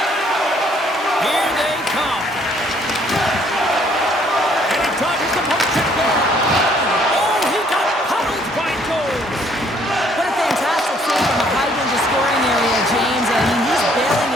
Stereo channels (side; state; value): both; normal; correlation 0.63